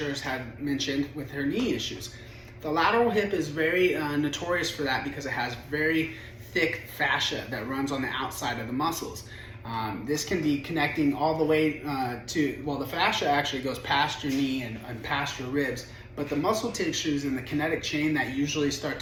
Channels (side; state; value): both; identical; correlation 1.00